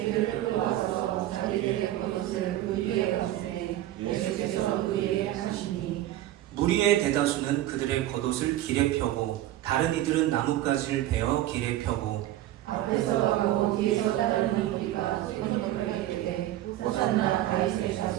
끌어와서 자기들의 겉옷을 그 위에 얹으니 예수께서 그 위에 타시니 무리의 대다수는 그들의 겉옷을 길에 펴고 다른 이들은 나뭇가지를 베어 길에 펴고 앞에서 가고 뒤에서 따르는 우리가 소리를 이르되 호산나 다윗의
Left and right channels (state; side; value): quieter; left; 14.0 dB